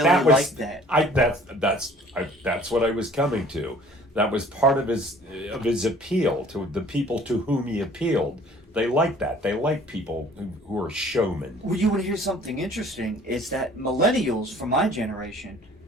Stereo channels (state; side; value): normal; both; correlation 0.52